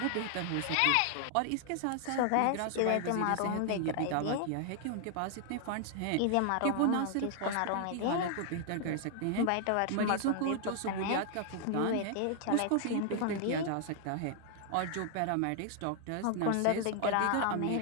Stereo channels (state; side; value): different; both; correlation 0.00